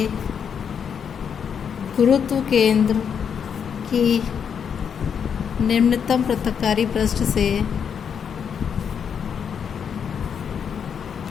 गुरुत्व केंद्र की निम्नतम पृथक्कारी पृष्ठ से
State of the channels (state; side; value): quieter; right; 7.3 dB